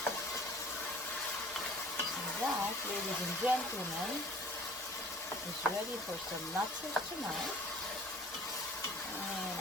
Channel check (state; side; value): normal; both; correlation 0.48